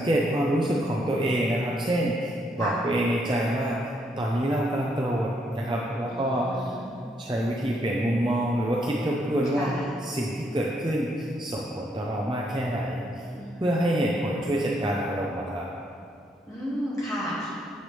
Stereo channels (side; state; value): both; normal; correlation 0.74